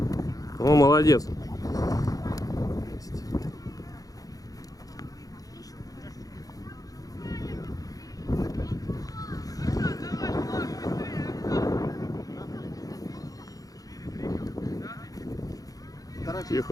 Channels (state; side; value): late; right; 0.17 ms